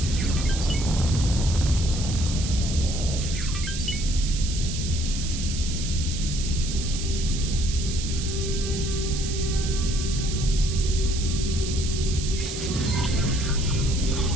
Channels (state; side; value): noise; right; hiss, 7 dB below the sound